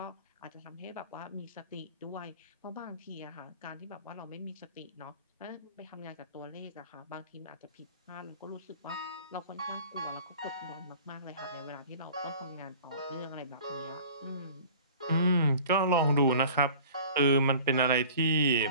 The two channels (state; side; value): inverted; both; correlation -0.44